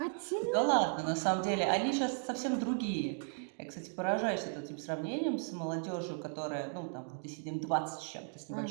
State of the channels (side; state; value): left; silent; 54 dB below the other